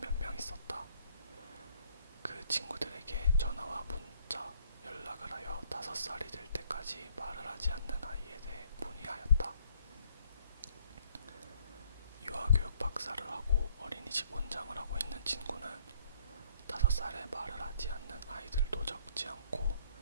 명 있었다. 그 친구들에게 전화와 문자, 연락을 하여 5살이 될 때까지 말을 하지 않는 아이에 대해 문의하였다. 유아교육 박사를 하고 어린이집 원장을 하고 있는 친구는 5살에 말을 하지 않는 아이들도 적지 않고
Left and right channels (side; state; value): both; inverted; correlation -0.64